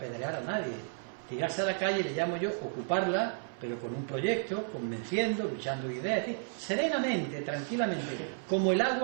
a nadie. Tirarse a la calle le llamo yo ocuparla, pero con un proyecto, convenciendo, luchando ideas, serenamente, tranquilamente, como el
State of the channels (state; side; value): silent; left; 56 dB below the other